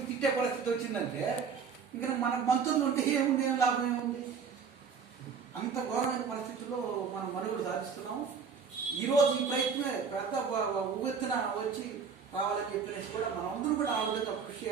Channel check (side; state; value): left; quieter; 6.0 dB